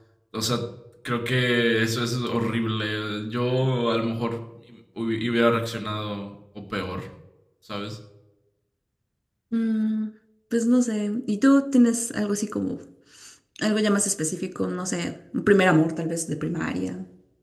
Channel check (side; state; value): both; identical; correlation 1.00